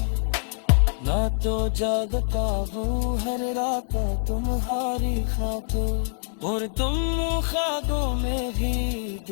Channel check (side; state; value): right; silent; digital silence